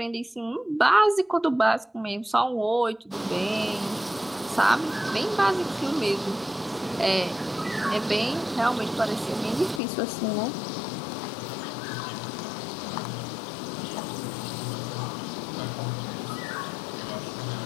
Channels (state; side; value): drops out; right; at 9.8 s